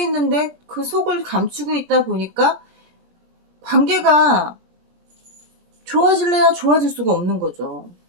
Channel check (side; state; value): left; late; 21 ms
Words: 그 속을 감추고 있다 보니까 관계가 좋아질래야 좋아질 수가 없는 거죠.